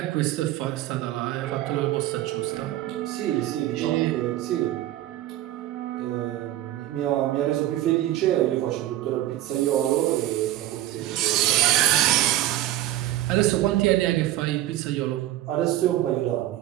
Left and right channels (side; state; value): left; quieter; 14.1 dB